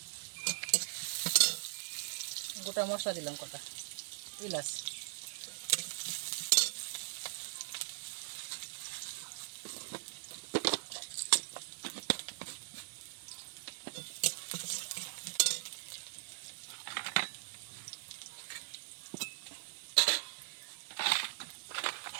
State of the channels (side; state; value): left; silent; 51 dB below the other